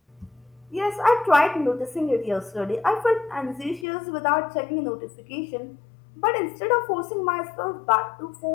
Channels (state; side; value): drops out; right; at 3.9 s